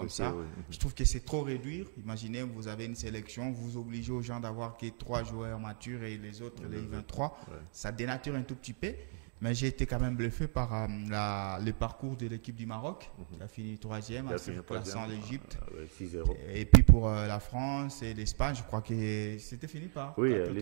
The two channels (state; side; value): silent; left; 54 dB below the other